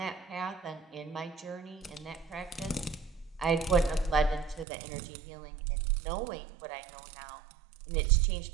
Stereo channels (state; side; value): drops out; left; at 4.7 s